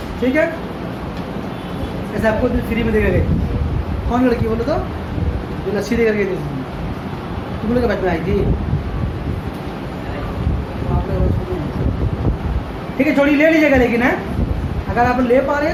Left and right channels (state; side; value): identical; both; correlation 1.00